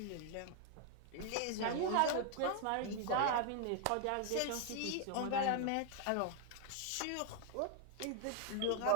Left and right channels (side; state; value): both; different; correlation 0.00